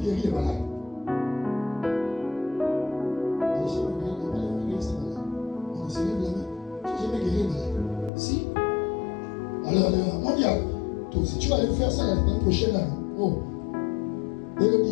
guérit les malades. On se lève la main. Tu n'as jamais guéri les malades. Si. Alors, mondial, toi aussi, tu vas aller faire ça l'année prochaine. Là. Oh.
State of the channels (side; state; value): right; drops out; at 8.1 s